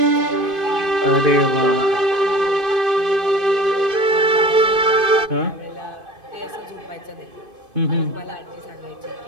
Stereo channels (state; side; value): late; left; 2.5 ms